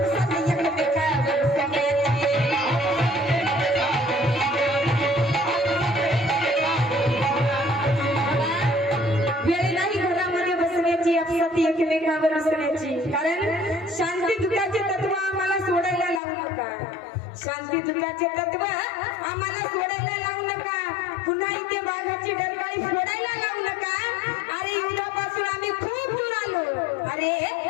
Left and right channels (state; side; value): drops out; right; at 16.2 s